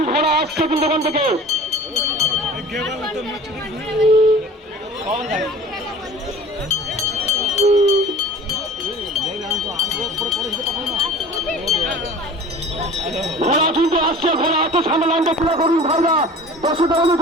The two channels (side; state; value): both; normal; correlation 0.43